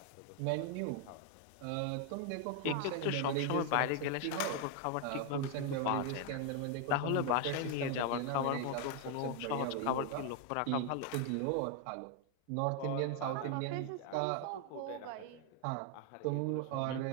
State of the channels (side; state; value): both; different; correlation 0.01